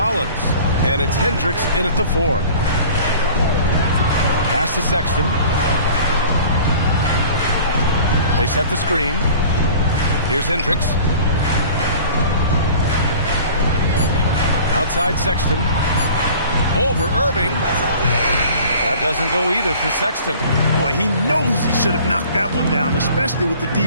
And it's Hendricks in at the 4. Pass to Sexton. They set the screen. Here's Hendricks. Outside Sexton. Over Irving. That doesn't go either for Sexton. Boy, he knows he should have knocked that one down, especially with the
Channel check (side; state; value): both; inverted; correlation -0.45